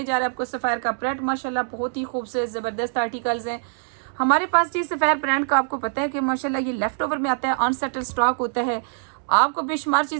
जा रहे हैं आपको सफ़ायर का प्रिंट, माशाल्लाह बहुत ही खूबसूरत ज़बरदस्त आर्टिकल्स हैं हमारे पास जी। सफ़ायर ब्रांड का आपको पता है कि माशाल्लाह ये लेफ्ट ओवर में आता है, अनसेटल स्टॉक होता है। आपको बेशुमार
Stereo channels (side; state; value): left; silent; 63 dB below the other